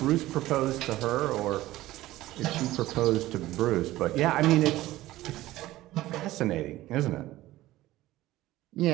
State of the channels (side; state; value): left; quieter; 16.4 dB